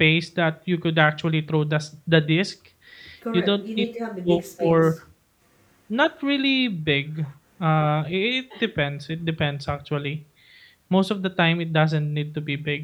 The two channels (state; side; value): identical; both; correlation 1.00